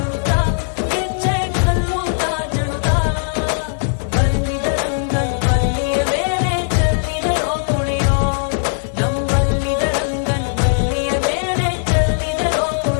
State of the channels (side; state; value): right; silent; digital silence